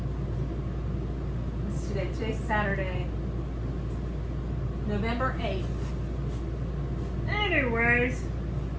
What's today? Today's Saturday, November 8th. Anyways,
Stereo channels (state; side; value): identical; both; correlation 1.00